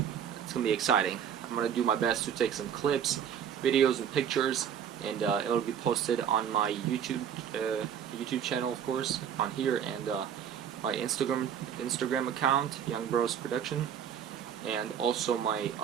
it's gonna be exciting. I'm gonna do my best to take some clips, videos, and pictures, and it'll be posted on my YouTube channel, of course, on here, and my Instagram account, Young Bros Production, and also my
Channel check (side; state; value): left; quieter; 8.6 dB